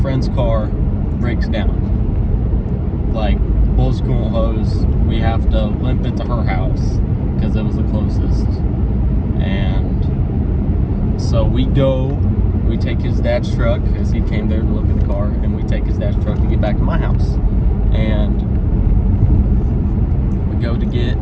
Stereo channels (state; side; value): identical; both; correlation 1.00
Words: friend's car breaks down. Like, bull's coolant hose. We have to limp it to her house because it was the closest. And so we take his dad's truck, because he came there to look at the car, and we take his dad's truck to get back to my house. And we go to get